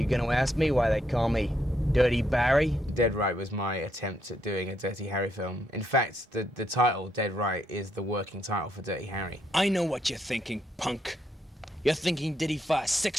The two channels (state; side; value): normal; both; correlation 0.76